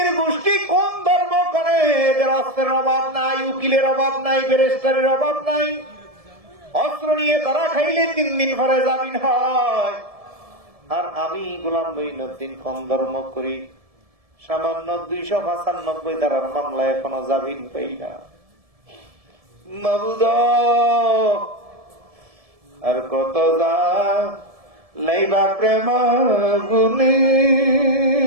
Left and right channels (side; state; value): left; late; 1.7 ms